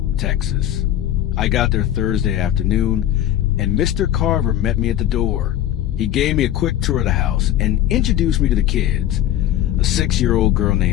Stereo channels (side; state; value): right; quieter; 12.2 dB